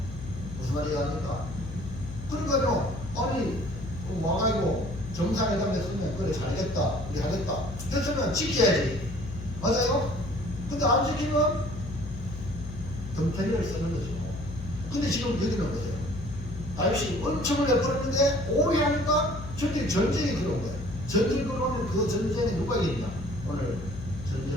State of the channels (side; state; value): left; noise; hum, 10 dB below the sound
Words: 무슨 말이 합니까? 그러니까요, 아니 와가지고 정상회담에 쓰면 그래 잘했다 우리 하겠다 했으면 지켜야지. 맞아요? 근데 안 지키면 덤태리를 쓰는 거죠. 근데 지금 여기는 뭐예요? 다윗이 은총을 내버렸는데 오해하니까 저들이 전쟁이 들어온 거예요. 전쟁이 들어오면 그 전쟁에 누가 이기냐? 오늘